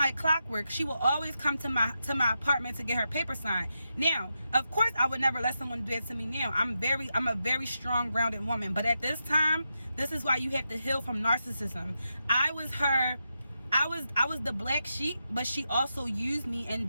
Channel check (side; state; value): both; inverted; correlation -0.86